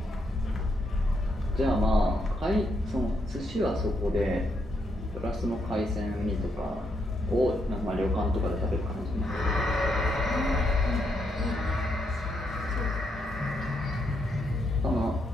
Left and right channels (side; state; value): both; normal; correlation 0.78